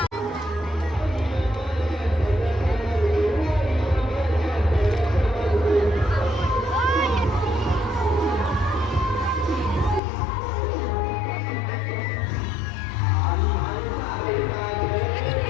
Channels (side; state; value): right; drops out; at 10.0 s